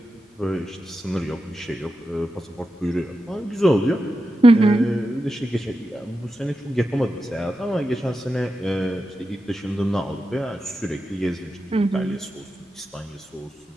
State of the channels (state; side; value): normal; both; correlation 0.90